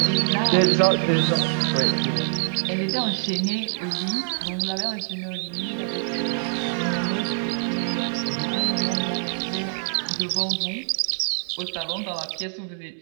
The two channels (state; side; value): silent; left; digital silence